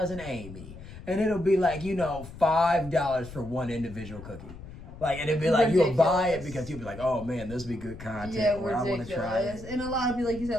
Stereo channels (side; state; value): left; noise; rumble, 14 dB below the sound